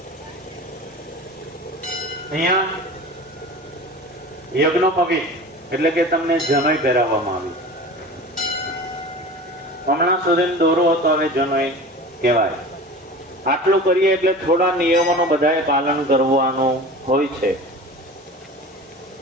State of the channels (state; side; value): normal; both; correlation 0.36